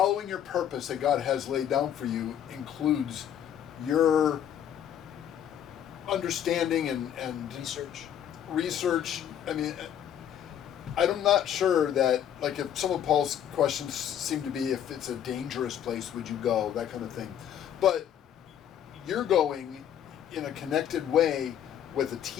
your purpose that God has laid down for you includes your understanding and research. I mean, I'm not sure that, like, if some of Paul's questions seem to be if it's a dangerous place, would you go, that kind of thing. But you're going in a connected way with a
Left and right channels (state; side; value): quieter; right; 9.9 dB